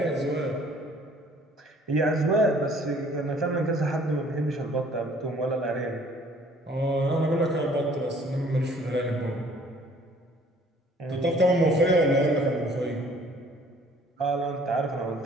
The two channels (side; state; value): both; normal; correlation 0.56